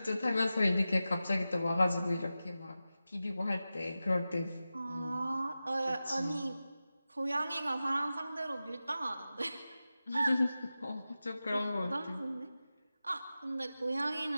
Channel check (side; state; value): both; inverted; correlation -0.94